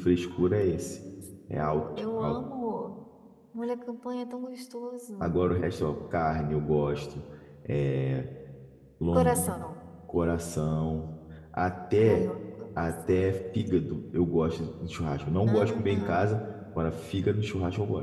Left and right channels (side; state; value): both; identical; correlation 1.00